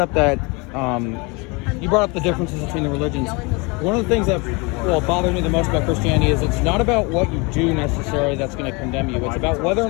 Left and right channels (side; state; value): right; quieter; 28.3 dB